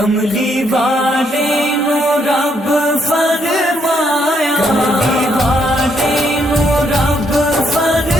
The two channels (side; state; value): both; normal; correlation 0.73